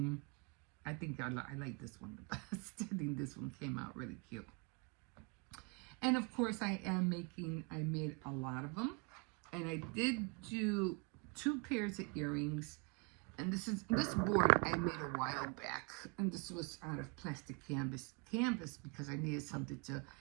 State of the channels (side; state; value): left; quieter; 32.3 dB